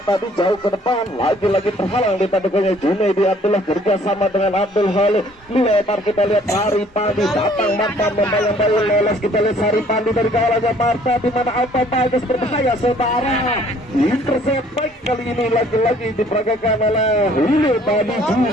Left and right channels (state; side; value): normal; both; correlation 0.58